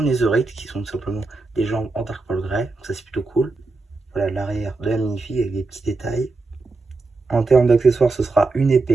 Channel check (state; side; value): quieter; left; 3.6 dB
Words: netherite qui sont tout simplement des jambes en dark pearl grey, donc ça c'est plutôt cool. Voilà l'arrière de la minifig avec des petits détails. En termes d'accessoires, ce sera une